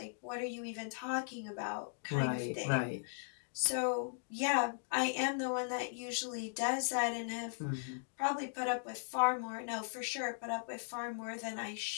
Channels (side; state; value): right; silent; digital silence